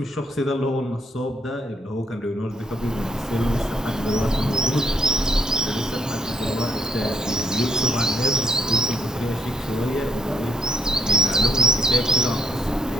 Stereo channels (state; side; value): normal; both; correlation 0.73